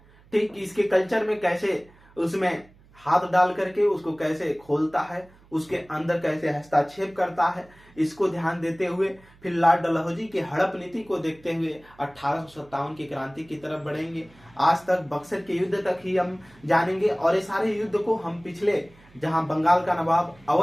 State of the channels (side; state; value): right; noise; hum, 27 dB below the sound